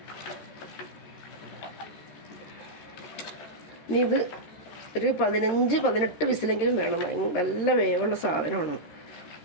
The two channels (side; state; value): right; late; 13 ms